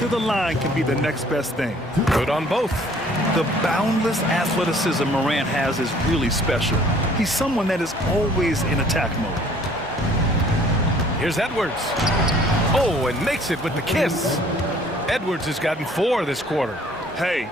the line can be the next best thing. Good on both. The boundless athleticism Morant has is really special. He's someone that is always in attack mode. Here's Edwards. Oh, and makes it with the kiss. Edwards has gotten 4 this quarter. Hey,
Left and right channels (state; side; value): normal; both; correlation 0.56